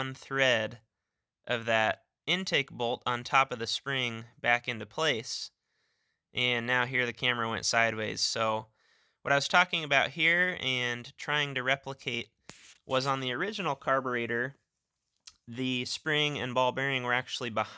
thread of that intake bolt on top of the spring back into place. And now here the camera went sideways. So what I was talking about here and trying to replicate was on the original carburetor, the spring and ball bearing were actually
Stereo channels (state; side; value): identical; both; correlation 1.00